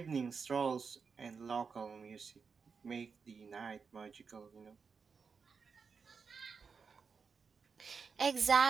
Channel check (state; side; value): quieter; left; 5.5 dB